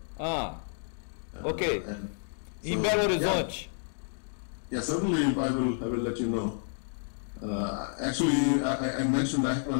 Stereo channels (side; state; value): right; silent; digital silence